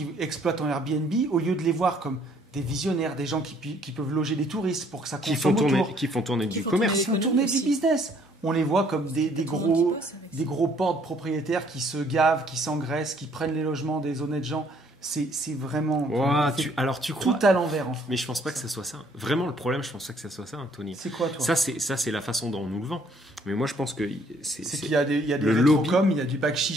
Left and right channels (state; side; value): normal; both; correlation 0.63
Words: exploitent en Airbnb, au lieu de les voir comme des visionnaires, des gens qui peuvent loger des touristes pour que ça Qui consomme font autour, tourner du font commerce. ils font l'économie tourner du aussi. business. on les voit comme des Tout le monde y gros, bosse avec ça. des gros portes propriétaires qui se gavent, qui s'engraissent, qui prennent les logements des honnêtes gens. C'est vraiment Ouah, c'est alors tu tout crois. à l'envers en fait. Mais je pense pas que ça soit ça. Vraiment, le problème, je pense pas que ça soit ça, Tony. C'est quoi toi? Ça, c'est la façon dont on nous le vend. Mais moi, je pense que C'est c'est qu'il y a des le rétrocoms, il y a du bac